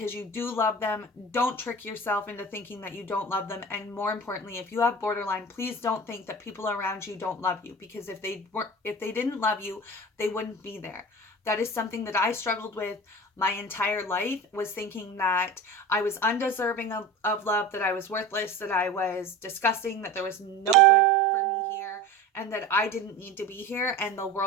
you do love them. Don't trick yourself into thinking that you don't love them. And more importantly, if you have borderline, please don't think that people around you don't love you, because if they didn't love you, they wouldn't be there. That is something that I struggled with my entire life, was thinking that I was undeserving of love, that I was worthless, that I was disgusting, that there was no good for me here, and that I didn't need to be here and the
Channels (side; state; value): both; normal; correlation 0.33